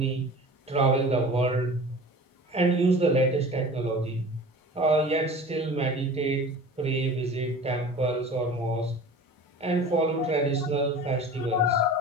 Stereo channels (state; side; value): normal; both; correlation 0.39